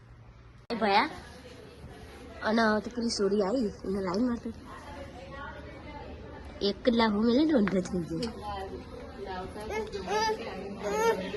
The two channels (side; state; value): both; identical; correlation 1.00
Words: ભયા અને તો પેલી સોરી આવી એને લાઈન મારતો એક કલાક હું મેલે ઊંધો થઈ ગયો.